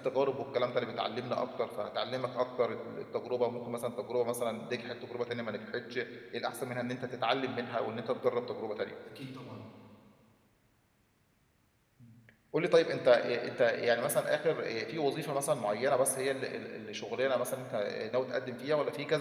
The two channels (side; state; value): both; identical; correlation 1.00